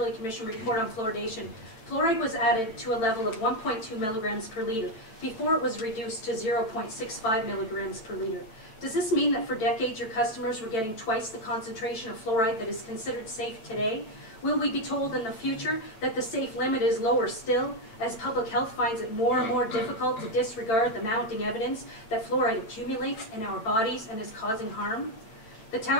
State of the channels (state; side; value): late; right; 9.0 ms